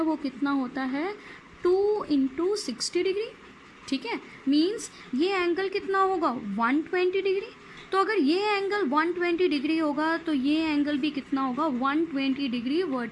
वो कितना होता है, 2 × 60 डिग्री, ठीक है। मीन्स ये एंगल कितना होगा, 120 डिग्री। तो अगर ये एंगल 120 डिग्री होगा तो ये एंगल भी कितना होगा, 120 डिग्री,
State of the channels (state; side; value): identical; both; correlation 1.00